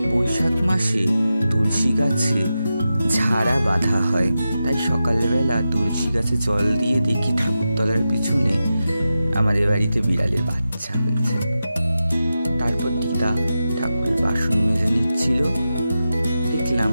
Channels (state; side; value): inverted; both; correlation -0.91